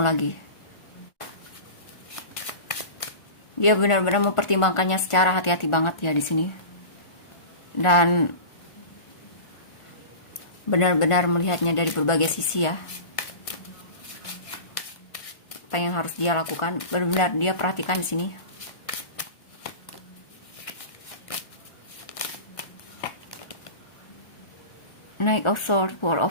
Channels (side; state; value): right; late; 1.4 ms